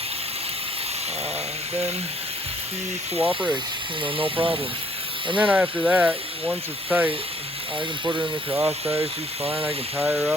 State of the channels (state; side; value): normal; both; correlation 0.63